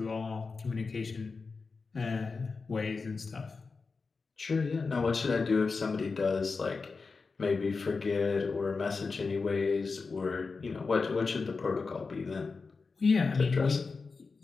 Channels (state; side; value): quieter; right; 4.5 dB